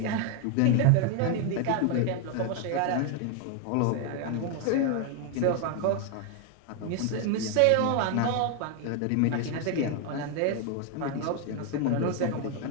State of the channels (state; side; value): different; both; correlation 0.01